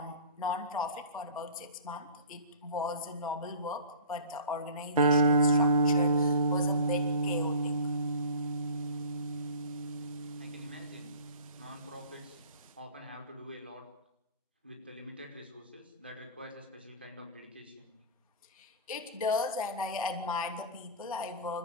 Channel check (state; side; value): inverted; both; correlation -0.41